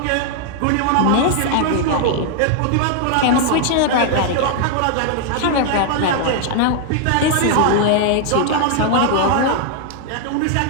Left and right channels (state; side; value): different; both; correlation 0.00